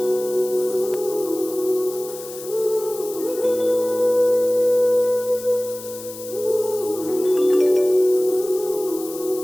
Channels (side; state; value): left; noise; hiss, 14 dB below the sound